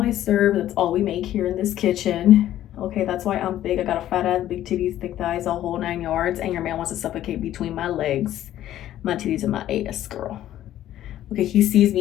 I serve. That's all we make here in this kitchen. Okay, that's why I'm big. I got a fat ass, big titties, thick thighs, a whole 9 yards, and your man wants to suffocate between my legs, my titties, and my ass, girl. Okay, he sees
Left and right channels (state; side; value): quieter; right; 12.7 dB